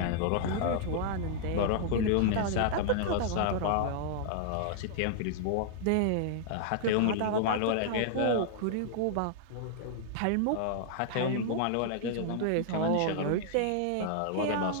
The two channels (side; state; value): both; different; correlation -0.01